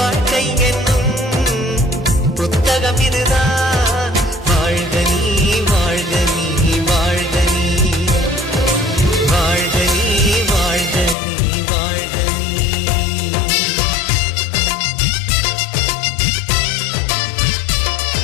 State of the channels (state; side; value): drops out; right; at 11.2 s